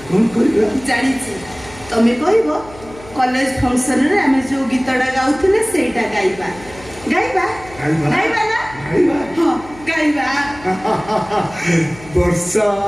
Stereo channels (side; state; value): left; noise; hum, 20 dB below the sound